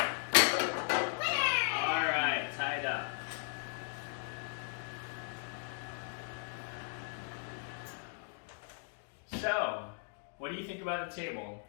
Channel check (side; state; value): right; silent; digital silence